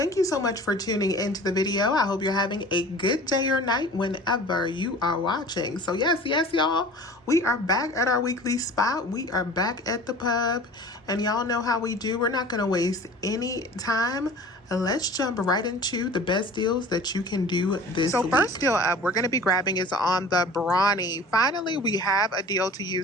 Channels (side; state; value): both; normal; correlation 0.42